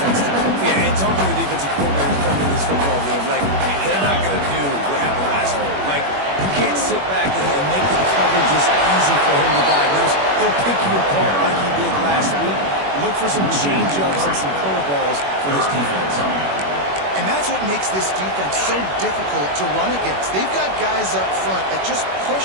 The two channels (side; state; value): left; late; 21 ms